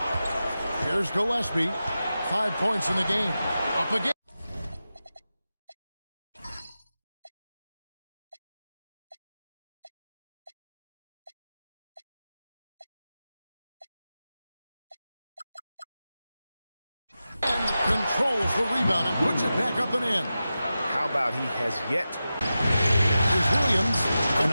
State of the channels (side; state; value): both; inverted; correlation -0.93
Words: Here's Gillespie. 5 points in the game. Up again. Controls the rebound and puts it back up and in. How about he has yet? Here's Williams, and